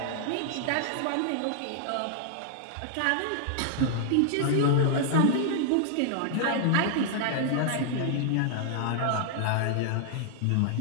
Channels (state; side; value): different; both; correlation -0.01